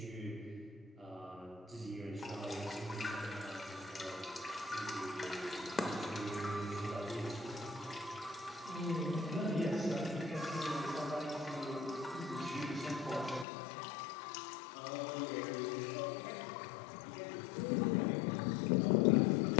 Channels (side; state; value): right; drops out; at 13.5 s